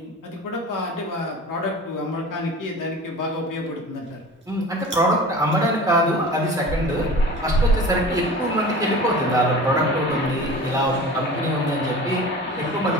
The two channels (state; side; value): normal; both; correlation 0.38